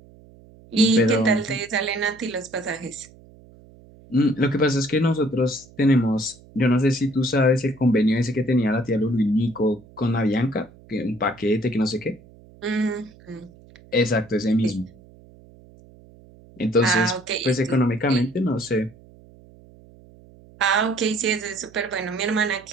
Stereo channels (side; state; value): right; noise; hum, 24 dB below the sound